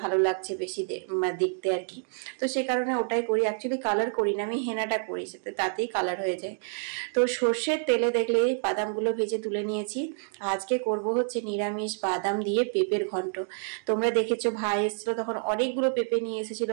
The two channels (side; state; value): left; silent; digital silence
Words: ভালো লাগছে বেশি দেখতে আর কি। তো সেই কারণে ওটাই করি, অ্যাকচুয়ালি কালার করি না, আমি হেনাটা করি, তাতেই কালার হয়ে যায়। তো সর্ষের তেলে দেখলে বাদামগুলো ভেজে তুলে নিয়েছি। আজকে করব হচ্ছে নিরামিষ বাদাম দিয়ে পেঁপের ঘন্ট। তোমরা দেখেছো ভাই এসেছিল তখন অনেকগুলো পেঁপে নিয়ে এসেছিল,